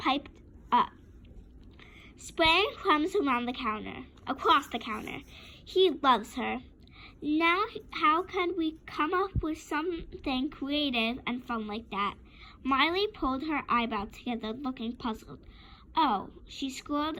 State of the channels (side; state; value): both; identical; correlation 1.00